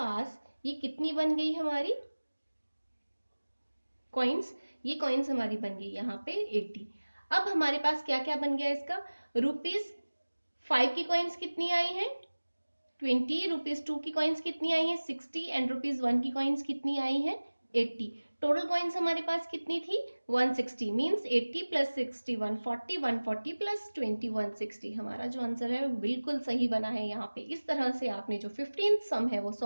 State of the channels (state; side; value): inverted; both; correlation -1.00